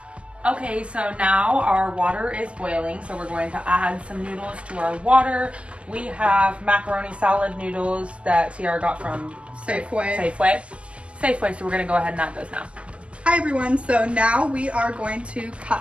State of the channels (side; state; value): left; late; 0.056 ms